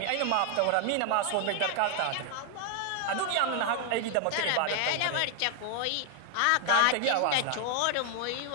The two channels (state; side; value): different; both; correlation 0.00